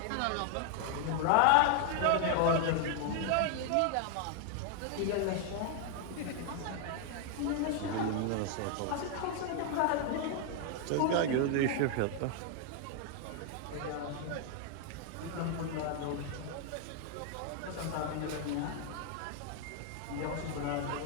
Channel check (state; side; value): different; both; correlation 0.00